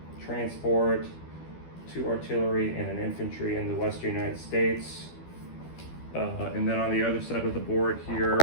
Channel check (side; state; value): right; late; 12 ms